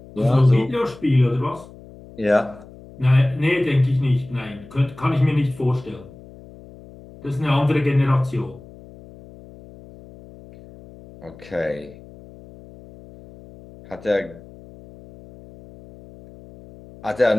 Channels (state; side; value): noise; left; hum, 20 dB below the sound